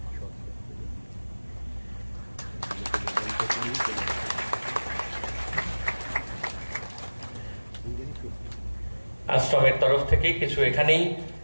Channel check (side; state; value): both; inverted; correlation -1.00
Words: আশ্রমের তরফ থেকে কিছু এখানেই